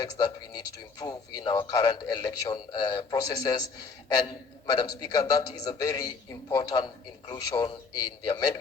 that we need to improve in our current election processes. And Madam Speaker, that is a very important inclusion in the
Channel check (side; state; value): right; quieter; 4.8 dB